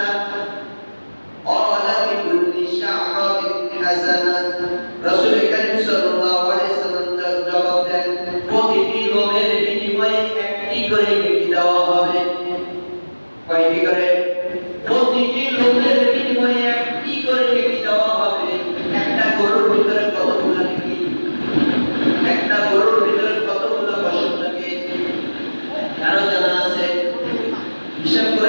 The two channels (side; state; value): both; inverted; correlation -1.00